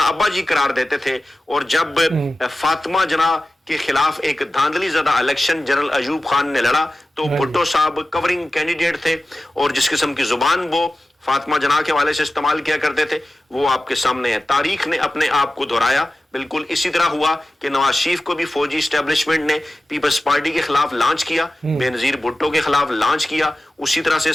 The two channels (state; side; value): normal; both; correlation 0.94